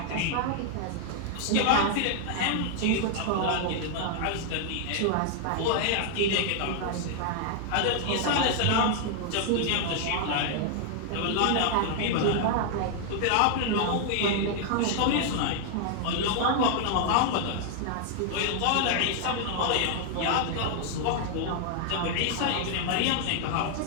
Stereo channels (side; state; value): both; different; correlation 0.00